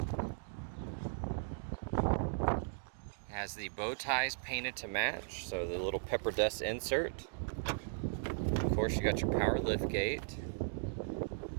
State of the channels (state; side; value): silent; left; digital silence